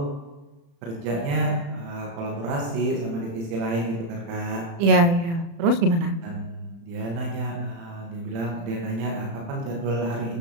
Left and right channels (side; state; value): left; late; 35 ms